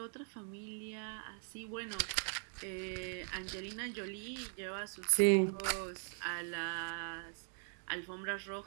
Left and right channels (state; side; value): silent; left; 51 dB below the other